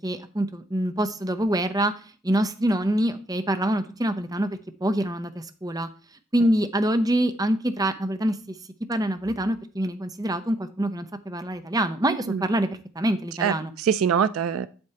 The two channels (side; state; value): both; normal; correlation 0.70